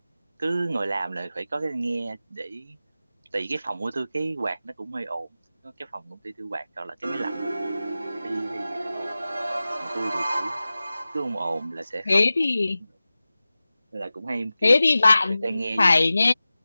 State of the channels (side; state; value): both; inverted; correlation -0.96